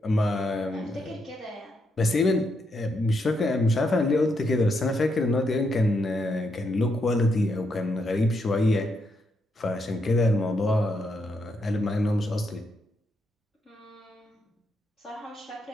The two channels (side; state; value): both; normal; correlation 0.80